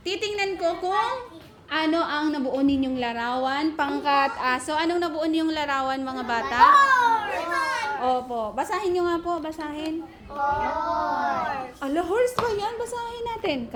Titingnan ko kung ano ang nabuo ninyong larawan. Pangkat aso. Anong nabuo ninyong larawan, mga bata? Opo. Basahin nyo nga po. Basahin. Ala, horse ba yan? Basahin natin.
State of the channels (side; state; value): both; identical; correlation 1.00